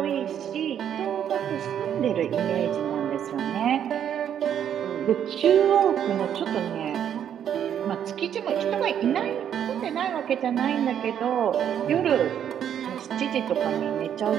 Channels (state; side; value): quieter; left; 9.3 dB